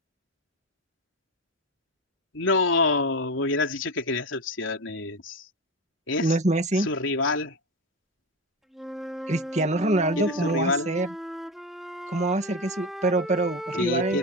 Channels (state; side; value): normal; both; correlation 0.20